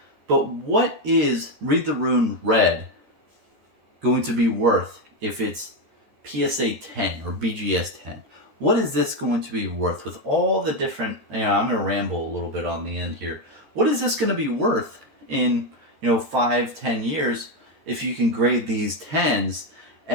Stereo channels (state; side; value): late; left; 13 ms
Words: But what is Read the Rune Red going to be worth if it's PSA 10 or BGS 10? What is this going to be worth with all the different, I'm going to ramble a little bit on the end here. What is this going to be worth in, 5-10 years if you can grade these 10s?